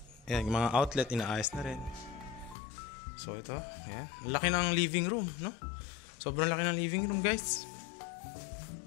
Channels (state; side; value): drops out; right; at 2.6 s